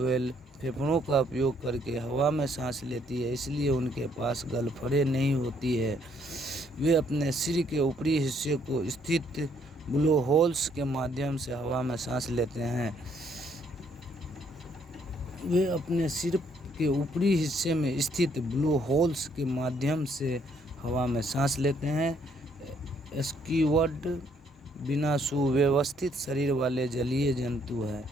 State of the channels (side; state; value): both; normal; correlation 0.68